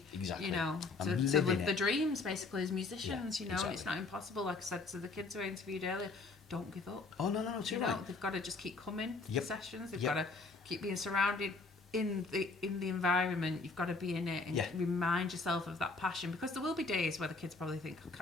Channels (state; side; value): quieter; right; 3.8 dB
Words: be, exactly. you know, And to living live it. the dreams basically as musicians. Yeah, you know, exactly. it's not impossible. Like I said to the kids who I interviewed earlier, don't give up. Oh no, too You know, right. they've got to just keep coming to Yep. the sessions. They've Yep. got to keep being surrounded in the environment. You've got to be in it and Yeah. remind yourself of that passion, because there will be days where the kids probably think, I